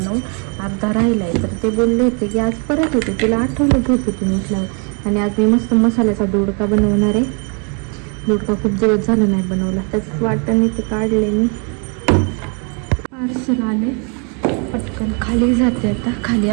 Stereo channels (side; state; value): left; quieter; 37.1 dB